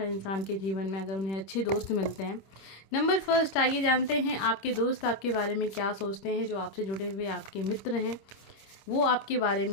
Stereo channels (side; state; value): right; late; 26 ms